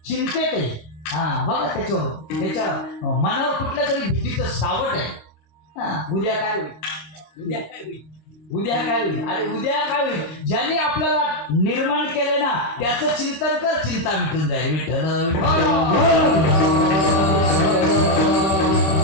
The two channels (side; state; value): right; late; 26 ms